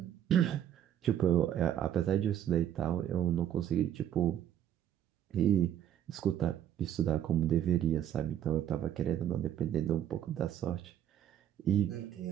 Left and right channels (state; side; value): quieter; left; 10.7 dB